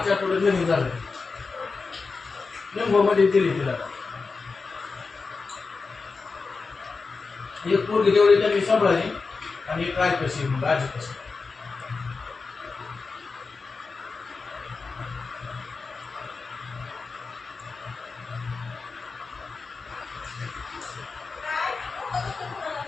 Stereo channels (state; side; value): quieter; right; 4.4 dB